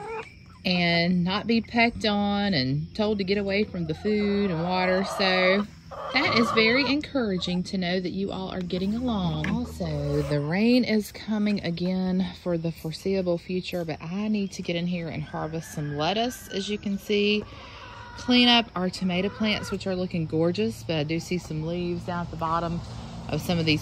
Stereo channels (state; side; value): identical; both; correlation 1.00